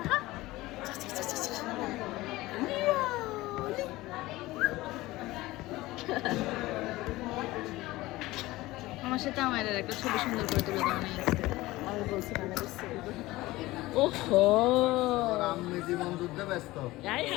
আমার সাথে আমার একটা ছবি সুন্দর করে তুলে দাও না। আমি বলছিলাম ওহো আমি জীবন যুদ্ধে ব্যস্ত হাই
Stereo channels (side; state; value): right; quieter; 18.8 dB